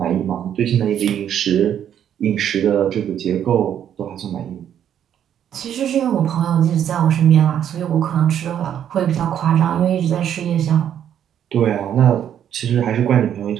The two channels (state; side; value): quieter; left; 9.7 dB